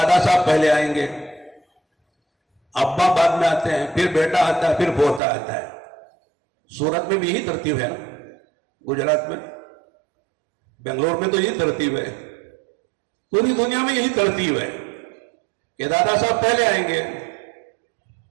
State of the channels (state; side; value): drops out; left; at 5.2 s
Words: صاحب پہلے آئیں گے، ابا بعد میں آتے ہیں، پھر بیٹا آتا ہے، پھر پوتا آتا ہے. سورت میں بھی یہی ترتیب ہے نا، گجرات میں، بنگلور میں تو یہی ترتیب ہے. پوری دنیا میں یہی ترتیب ہے کہ دادا صاحب پہلے آئیں گے،